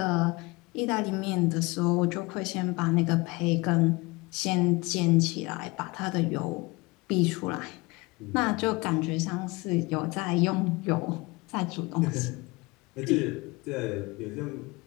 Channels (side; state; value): right; quieter; 24.2 dB